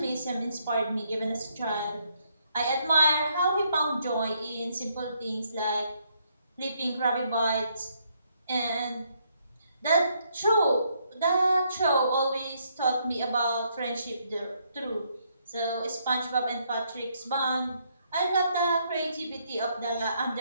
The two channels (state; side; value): inverted; both; correlation -0.72